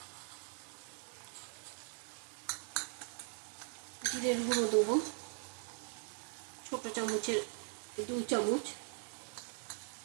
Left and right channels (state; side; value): silent; left; 51 dB below the other